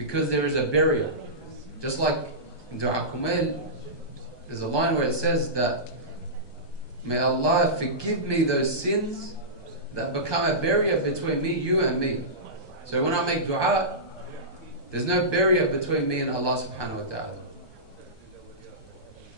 there is a barrier. Just like in Dua Kumail, there's a line where it says that, may Allah forgive me those sins that become a barrier between me, you and me. So when I make dua, there's no barrier between me and Allah subhanahu wa ta'ala.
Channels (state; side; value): late; right; 1.2 ms